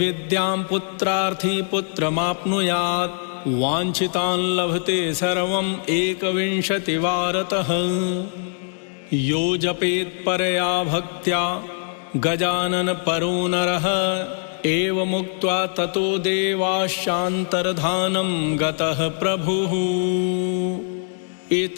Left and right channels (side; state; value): right; silent; digital silence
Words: पुत्रार्थी पुत्रमाप्नुयात्। वाञ्छितान् लभते सर्वम् एकविंशतिवारतः। यो जपेत्परया भक्त्या गजानन परो नरः, एवमुक्त्वा ततो देवाश्चान्तर्धानं गतः प्रभुः।